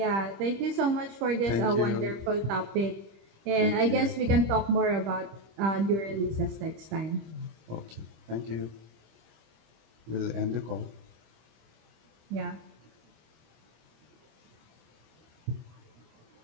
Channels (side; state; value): left; late; 25 ms